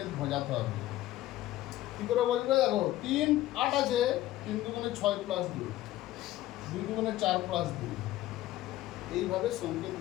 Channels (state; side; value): quieter; right; 15.1 dB